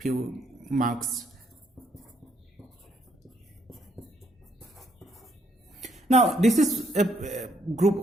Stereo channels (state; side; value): normal; both; correlation 0.71